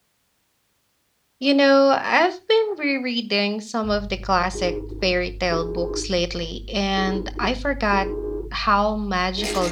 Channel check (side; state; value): both; identical; correlation 1.00